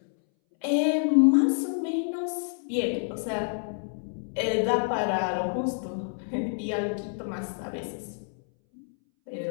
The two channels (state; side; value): silent; right; 59 dB below the other